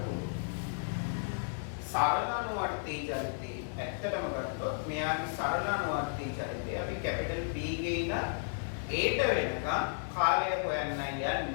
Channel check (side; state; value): right; silent; digital silence